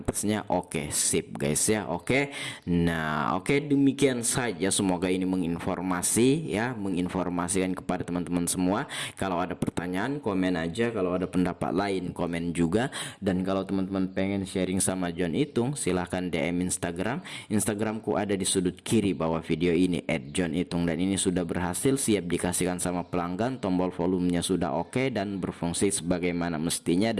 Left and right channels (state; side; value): identical; both; correlation 1.00